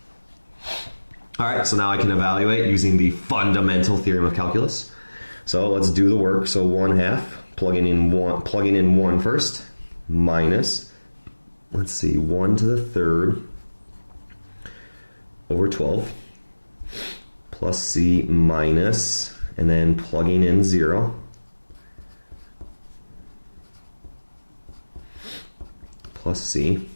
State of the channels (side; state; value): both; inverted; correlation -1.00